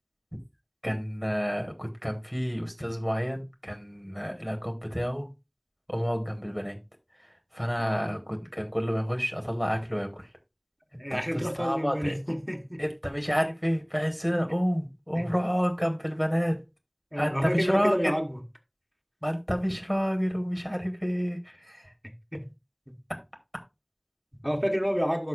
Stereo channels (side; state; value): both; identical; correlation 1.00